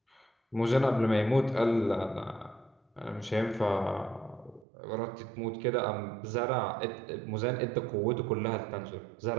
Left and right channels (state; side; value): drops out; left; at 4.7 s